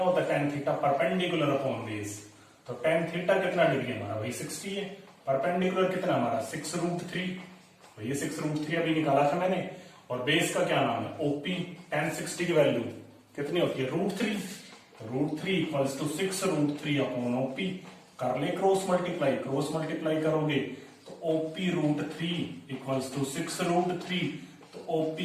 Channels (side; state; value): both; identical; correlation 1.00